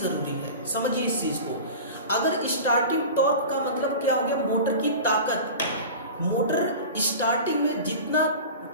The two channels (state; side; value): inverted; both; correlation -0.33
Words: है, समझिए इस चीज को। अगर स्टार्टिंग टॉर्क का मतलब क्या हो गया? मोटर की ताकत। मोटर स्टार्टिंग में जितना